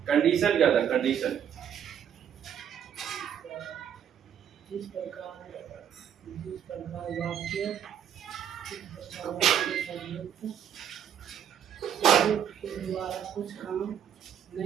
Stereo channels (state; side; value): quieter; left; 9.0 dB